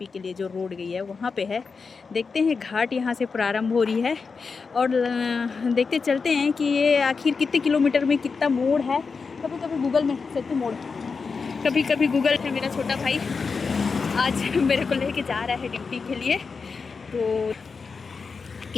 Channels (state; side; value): quieter; right; 5.0 dB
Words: के लिए जो रोड गई है वहाँ पे है। देखते हैं घाट यहाँ से प्रारंभ हो रही है और देखते चलते हैं कि ये आखिर कितने किलोमीटर में कितना मोड़ है। कभी कभी गूगल में सत्तू मोड़, कभी कभी गूगल है। मेरा छोटा भाई आज मेरे को लेके जा रहा है ड्यूटी के लिए, तो